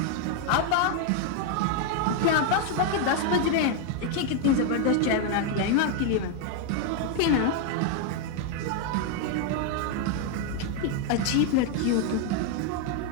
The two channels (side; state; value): both; different; correlation 0.01